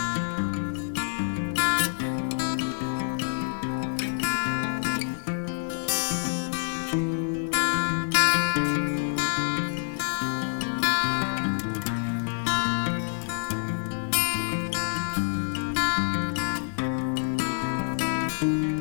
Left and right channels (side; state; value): right; silent; 60 dB below the other